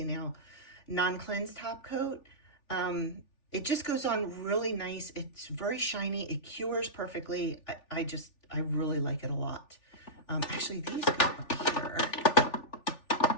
Nail non-cleanse top coat. It just goes on really nice. It's very shiny. It cures perfectly. I really like it a lot. Actually, these go up here.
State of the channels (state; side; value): late; right; 3.4 ms